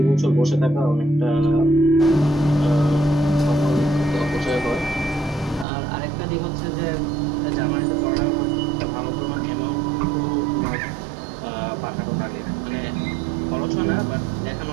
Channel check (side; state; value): left; drops out; at 5.7 s